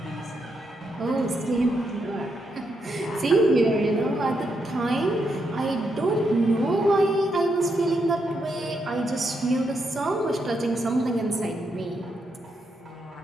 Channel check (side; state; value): both; normal; correlation 0.81